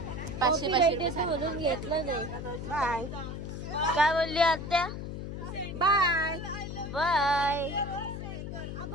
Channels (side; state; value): left; noise; hum, 7 dB below the sound